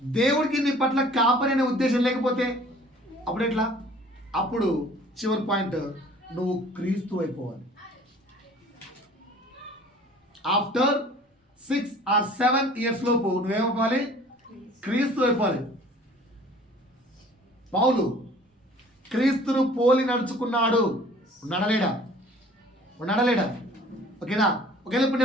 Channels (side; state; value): both; normal; correlation 0.50